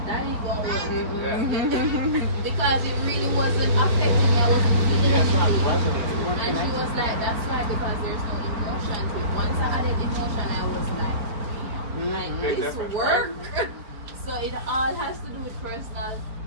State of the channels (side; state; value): left; late; 4.5 ms